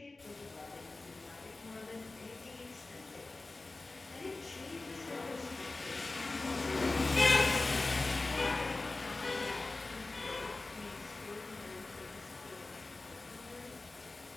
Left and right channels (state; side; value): quieter; right; 3.3 dB